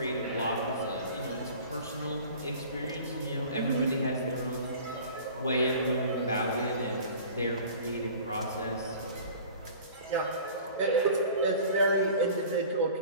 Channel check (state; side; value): inverted; both; correlation -0.43